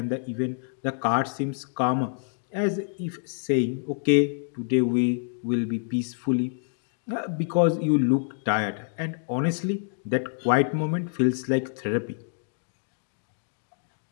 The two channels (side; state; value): right; silent; digital silence